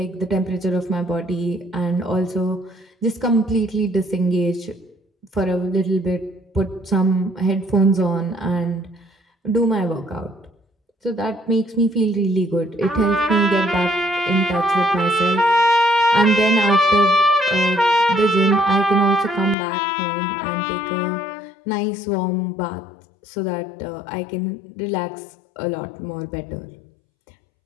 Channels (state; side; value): drops out; right; at 19.6 s